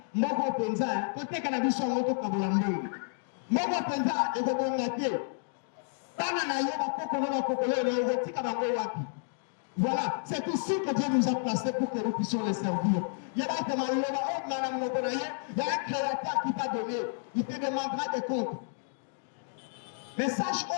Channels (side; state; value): right; silent; digital silence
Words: Moko Penza, peut-être qu'on a vu son moto comme l'ambou. Moko Penza, et qu'on a été. Voilà, c'est ici que Dieu nous a placés pour que nous puissions les servir. Il y a un créateur qui t'a donné, il te demandera des comptes. Message oh,